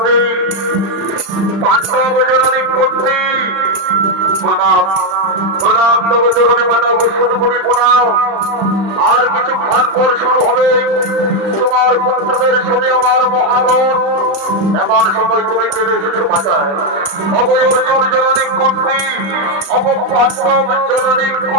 पांडव जननी कुंती प्रणाम प्रणाम तब चरणे माता गोस्वामी कोटि प्रणाम আর কিছুক্ষণ পর শুরু হবে তোমার পুত্রদের সাথে আমার মহারণ এমন সময় তুমি চলে এসেছো মাতায় অবয় অর্জুন জননী কুন্তি অব পাণ্ডব জননী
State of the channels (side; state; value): left; late; 35 ms